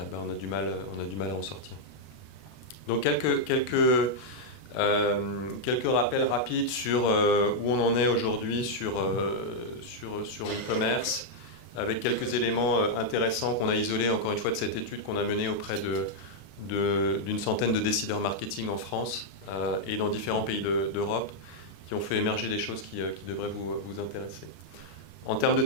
a du mal à en sortir. Donc quelques rappels rapides sur où on en est aujourd'hui sur l'e-commerce, avec quelques éléments intéressants qu'on a isolés encore une fois de cette étude qu'on a menée auprès d'une centaine de décideurs marketing en France et dans différents pays d'Europe, qui ont fait émerger des choses qui devraient vous intéresser. En termes de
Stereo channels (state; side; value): late; right; 32 ms